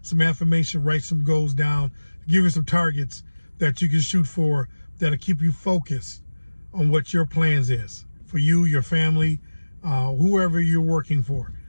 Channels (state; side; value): inverted; both; correlation -1.00